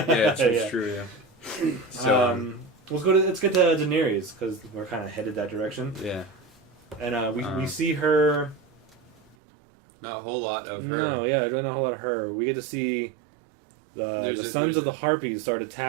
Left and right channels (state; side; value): drops out; left; at 9.3 s